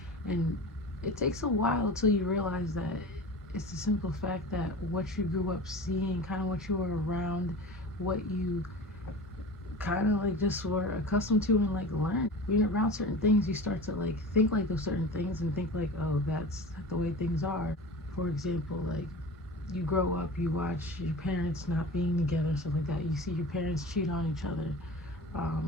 And it takes a while till you realize that it's the simple fact that what you grew up seeing, kind of what you were around, what you kind of like just were accustomed to and like learned. When you're around certain things, you start to like think like those certain things and think like, oh, that's the way things are. For example, like you grow up, you watch your parents not being together, stuff like that. You see your parents cheat on each other.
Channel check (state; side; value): normal; both; correlation 0.34